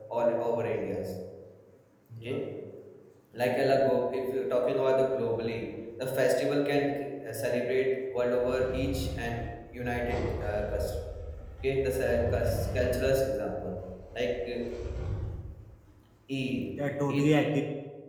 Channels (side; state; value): both; identical; correlation 1.00